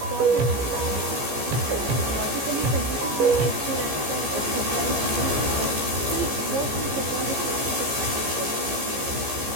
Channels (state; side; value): late; left; 15 ms